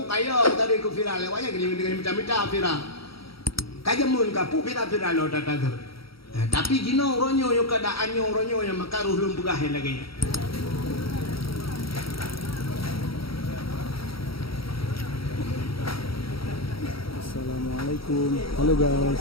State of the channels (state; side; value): late; right; 0.75 ms